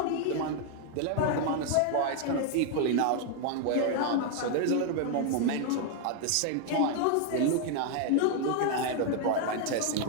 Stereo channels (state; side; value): different; both; correlation 0.00